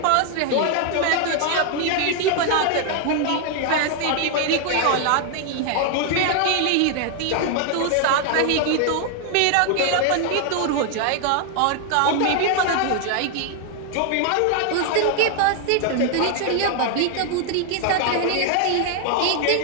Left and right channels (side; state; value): both; different; correlation 0.00